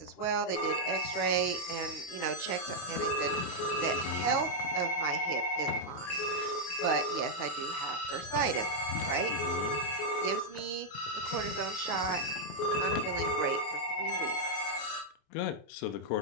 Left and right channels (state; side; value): late; right; 28 ms